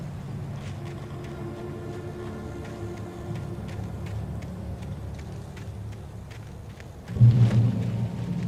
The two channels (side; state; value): both; identical; correlation 1.00